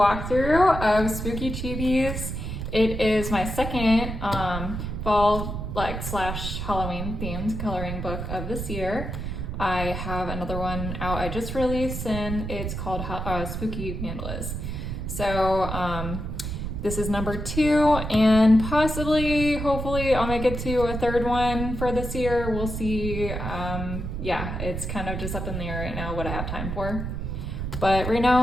of Spooky Chibis. It is my second fall slash Halloween themed coloring book of this year. I have another one out I just released and it's called Spooky Mandalas. So this is number 2 and possibly, hopefully I'll make it to a third one for this year. We'll see. Yeah, it's kind of just up in the air right now what I have time for. But right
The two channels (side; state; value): right; noise; rumble, 5 dB below the sound